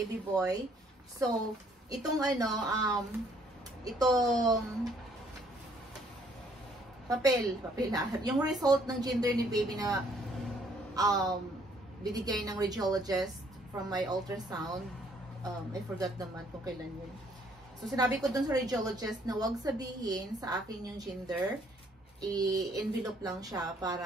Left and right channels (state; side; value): normal; both; correlation 0.64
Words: boy. So, itong itong papel na. Yung result ng gender ni baby na binigay ng radiologist from my ultrasound. I forgot naman kung kailan yun. So, sinabi ko dun sa radiologist na wag sabihin sa akin yung gender. I-envelope lang siya